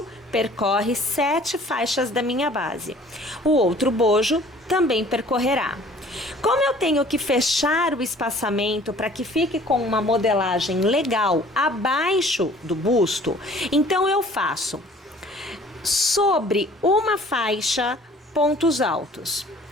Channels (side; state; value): both; normal; correlation 0.51